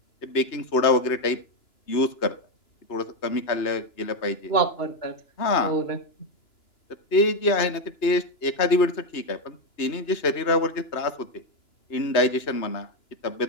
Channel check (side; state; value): right; late; 2.9 ms